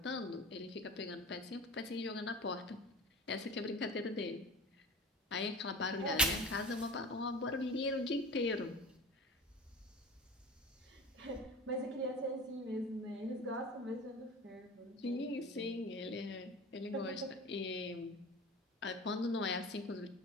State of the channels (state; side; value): normal; both; correlation 0.35